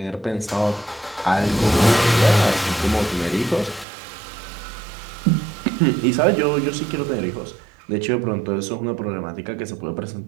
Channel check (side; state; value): left; drops out; at 3.9 s